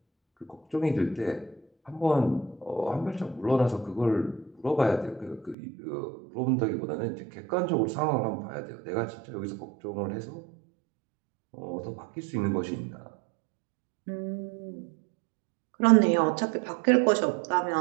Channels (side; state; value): left; drops out; at 5.6 s